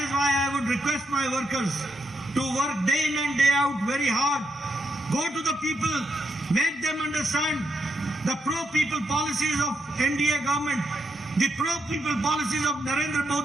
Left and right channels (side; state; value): both; normal; correlation 0.80